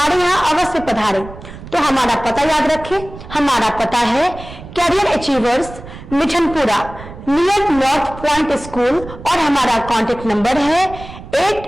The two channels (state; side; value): noise; right; rumble, 15 dB below the sound